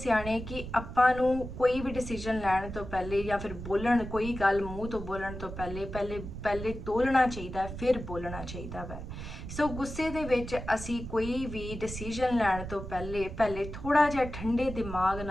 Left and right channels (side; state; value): right; noise; rumble, 9 dB below the sound